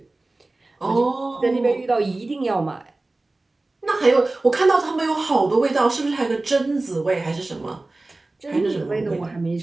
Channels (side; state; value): left; quieter; 3.0 dB